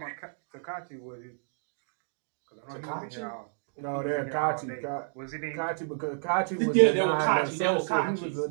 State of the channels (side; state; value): left; silent; digital silence